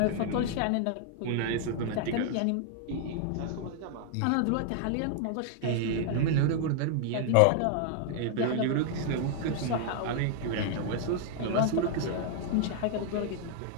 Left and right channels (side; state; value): both; different; correlation -0.01